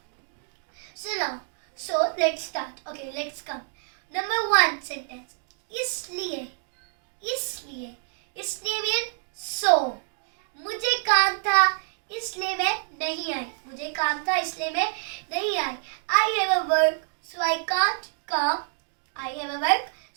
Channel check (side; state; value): left; silent; digital silence